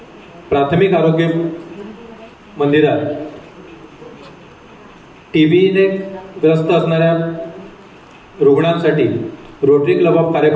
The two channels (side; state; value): both; identical; correlation 1.00